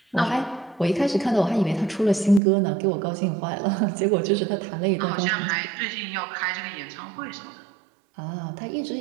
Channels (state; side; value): drops out; left; at 2.4 s